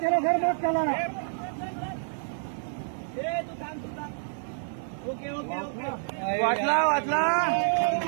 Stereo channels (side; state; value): left; silent; digital silence